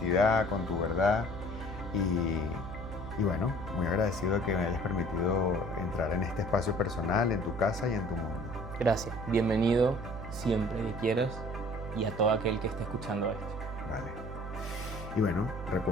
con tu verdad. Y bueno, muy agradecido de que me hayas permitido entrar en este espacio personal, en tu casa y en tu mundo. Gracias. Bienvenido siempre que quieras y a todo aquel que esté escuchando esto. Vale. Y bueno,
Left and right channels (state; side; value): noise; right; hum, 9 dB below the sound